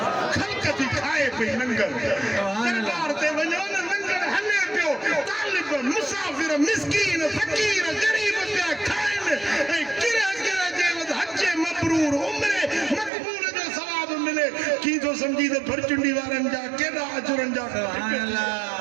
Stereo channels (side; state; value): left; drops out; at 13.1 s